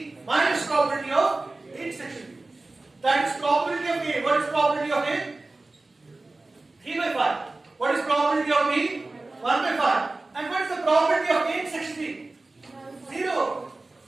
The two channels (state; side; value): quieter; left; 3.2 dB